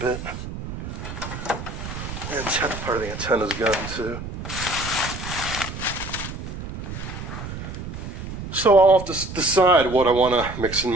And part of the antenna's gone too. So I'll have to decide what I want to mix and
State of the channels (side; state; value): right; noise; rumble, 8 dB below the sound